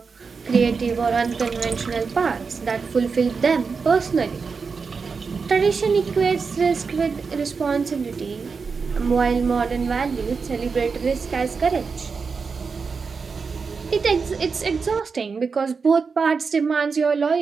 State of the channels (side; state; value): left; quieter; 5.1 dB